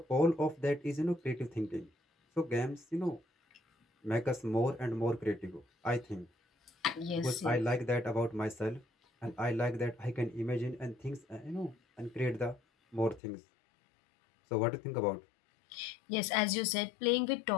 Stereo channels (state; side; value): drops out; right; at 13.2 s